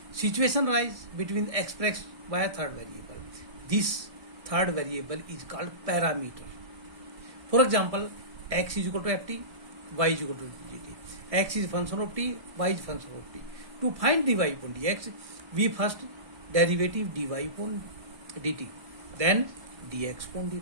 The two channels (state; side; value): late; left; 1.6 ms